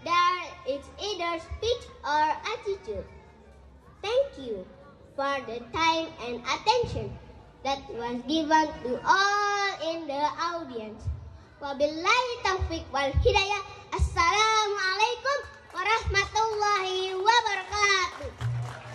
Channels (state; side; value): identical; both; correlation 1.00